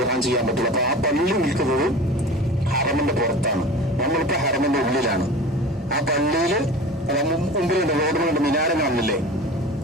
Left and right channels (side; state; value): both; normal; correlation 0.36